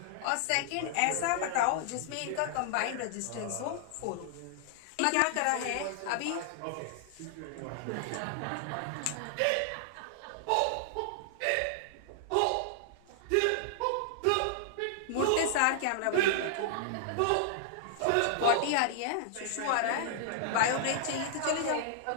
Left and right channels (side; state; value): both; different; correlation -0.01